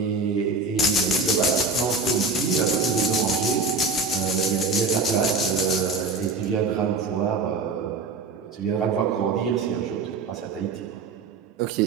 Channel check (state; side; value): quieter; left; 4.1 dB